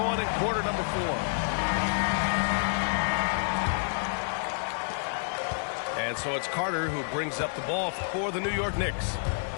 in quarter number 4. And so it's Carter who brings up the ball for the New York Knicks.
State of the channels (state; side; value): silent; right; digital silence